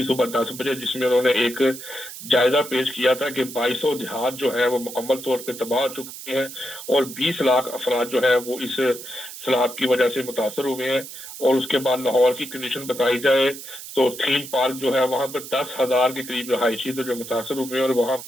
सुबह 10 बजे, जिसमें उन्होंने एक जायजा पेश किया था कि 2200 देहात जो है वो मुकम्मल तौर पे तबाह हो चुके हैं, और 20 लाख अफराद जो है वो इस सैलाब की वजह से मुतासर हुए हैं। और उसके बाद लाहौर की कंडीशन बताई जाए तो थीम पार्क जो है वहां पर 10,000 के करीब रहायशी तो जो मुतासर हुए हैं, और वहां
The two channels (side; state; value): right; noise; hiss, 12 dB below the sound